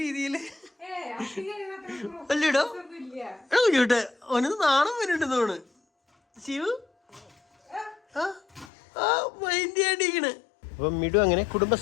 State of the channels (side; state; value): right; drops out; at 8.7 s